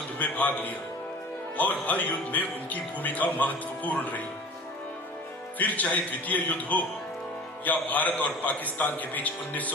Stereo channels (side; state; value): both; normal; correlation 0.40